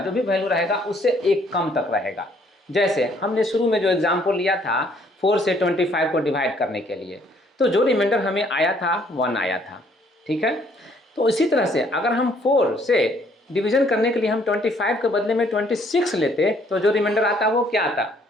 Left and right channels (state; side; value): normal; both; correlation 0.64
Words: भी वैल्यू रहेगा उससे 1 कम तक रहेगा। जैसे हमने शुरू में जो एग्जाम्पल लिया था 4 से 25 को डिवाइड करने के लिए, तो जो रिमाइंडर हमें आया था 1 आया था। ठीक है, तो इसी तरह से अगर हम 4 से डिवीजन करने के लिए हम 25 के बदले में 26 लेते तो जो रिमाइंडर आता वो क्या आता,